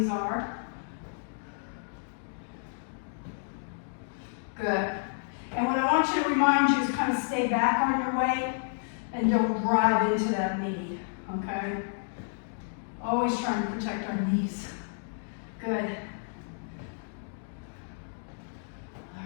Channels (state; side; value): silent; right; digital silence